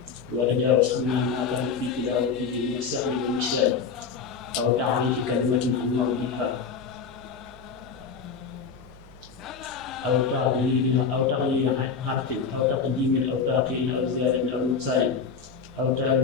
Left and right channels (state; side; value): quieter; right; 5.6 dB